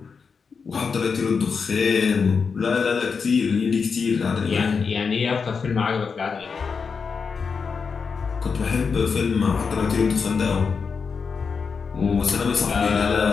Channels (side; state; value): right; quieter; 5.5 dB